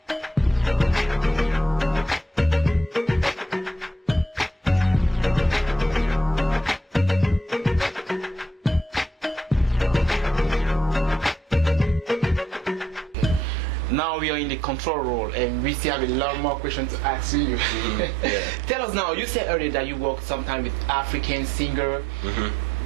Now we are in the control role and we still have a lot more questions to ask you. Yeah. Tell us now, you said earlier that you work sometime with African singer.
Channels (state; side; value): normal; both; correlation 0.72